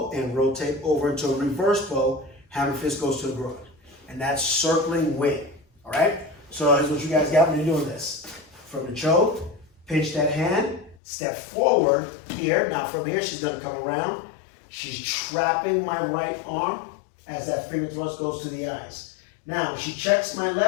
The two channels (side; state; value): right; drops out; at 11.0 s